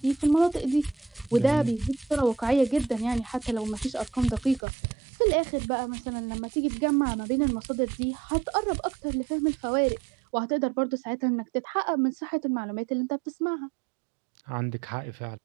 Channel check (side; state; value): left; drops out; at 4.6 s